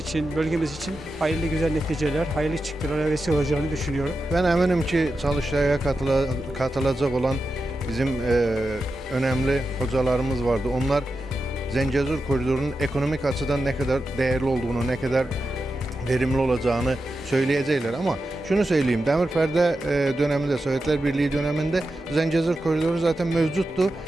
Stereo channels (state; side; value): normal; both; correlation 0.90